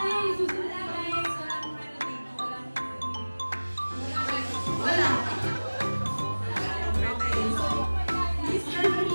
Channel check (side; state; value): both; inverted; correlation -1.00